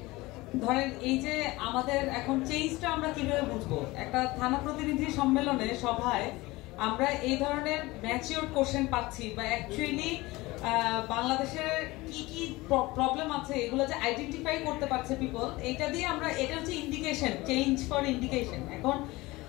ধরেন এই যে আমাদের এখন চেঞ্জটা আমরা কিভাবে বুঝবো, একটা থানা প্রতিনিধি সম্মেলনে সভায় আমরা এই ধরনের ম্যাচিওর কোশ্চেন পাচ্ছি বা অ্যাকচুয়ালি বাংলাদেশের কি কি প্রবলেম আছে এগুলো যে আইডেন্টিফাই করতে পারছে পিপল, এটা দিয়ে আমরা, এটা হচ্ছে ইন্ডিকেশন, চেঞ্জ ফর ইন্ডিকেশন। এখন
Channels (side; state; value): right; quieter; 20.8 dB